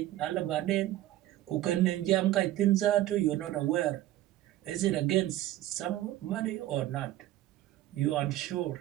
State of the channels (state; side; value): quieter; left; 14.4 dB